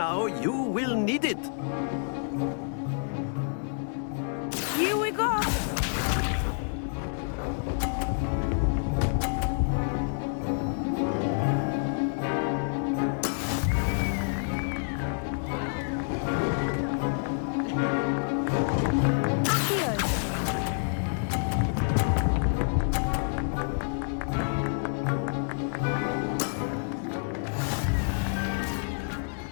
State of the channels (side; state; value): right; silent; digital silence